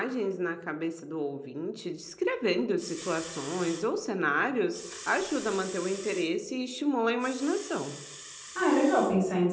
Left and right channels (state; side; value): identical; both; correlation 1.00